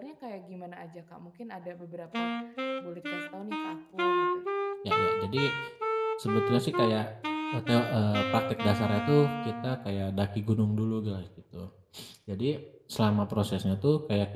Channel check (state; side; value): identical; both; correlation 1.00